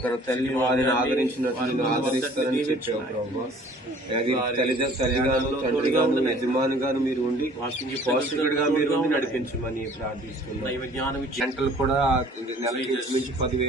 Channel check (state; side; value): normal; both; correlation 0.52